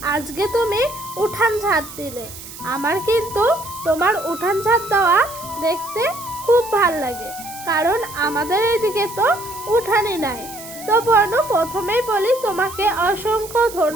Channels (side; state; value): right; noise; hiss, 14 dB below the sound